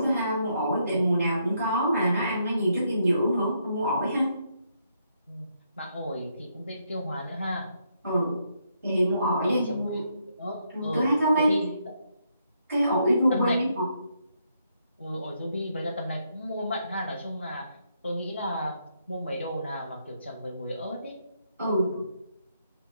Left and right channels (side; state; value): both; inverted; correlation -0.76